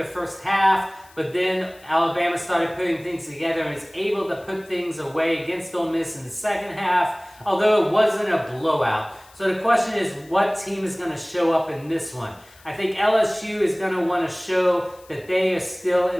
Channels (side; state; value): left; noise; hiss, 26 dB below the sound